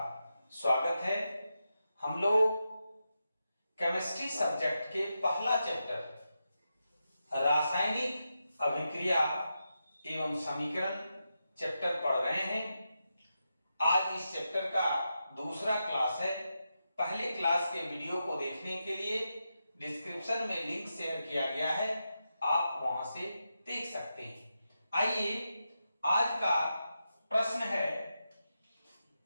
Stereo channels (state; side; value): inverted; both; correlation -0.88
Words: स्वागत है। हम लोग केमिस्ट्री सब्जेक्ट के पहला चैप्टर रासायनिक अभिक्रिया एवं समीकरण चैप्टर पढ़ रहे हैं। आज इस चैप्टर का दूसरा क्लास है। पहले क्लास के वीडियो को देखने के लिए डिस्क्रिप्शन में लिंक शेयर किया गया है, आप वहां से देख सकते हैं। आइए, आज का प्रश्न है,